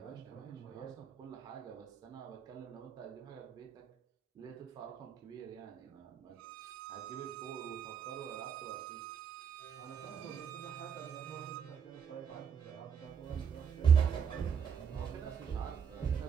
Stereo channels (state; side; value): quieter; left; 7.2 dB